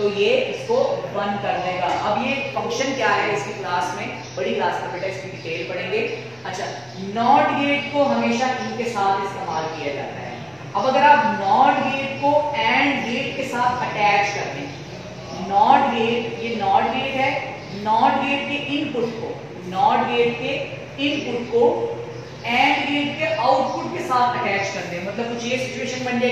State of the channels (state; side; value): identical; both; correlation 1.00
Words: ये इसको 1 कर देगा। अब ये फंक्शन क्या है इसकी क्लास में, बड़ी क्लास में बेटा इसकी डिटेल पढ़ेंगे। अच्छा, नॉट गेट को हमेशा इनके साथ इस्तेमाल किया जाता है। अब अगर आप नॉट गेट को एंड गेट के साथ अटैच कर दें, नॉट गेट, ये नॉट गेट है, नॉट गेट के इनपुट को, नॉट गेट के इनपुट को एंड गेट के आउटपुट के साथ अटैच कर दें, मतलब कुछ ये सिचुएशन बन